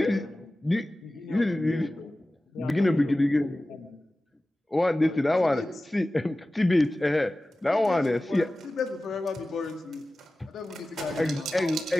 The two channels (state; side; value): normal; both; correlation 0.96